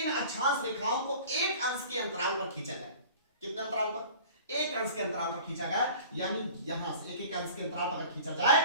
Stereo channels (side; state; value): both; inverted; correlation -0.43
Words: अक्षांश रेखाओं को एक अंश के अंतराल पर खींचा जाए, कितने अंतराल पर? एक अंश के अंतराल पर खींचा गया, यानी यहां से एक अंश के अंतराल पर खींचा जाए